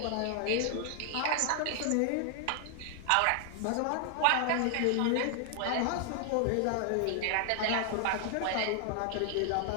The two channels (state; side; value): different; both; correlation 0.00